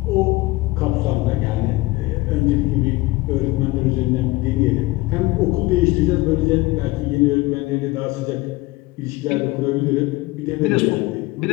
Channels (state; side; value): quieter; right; 20.3 dB